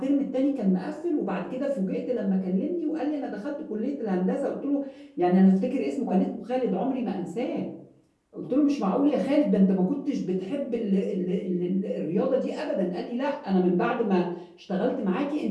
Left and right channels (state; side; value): identical; both; correlation 1.00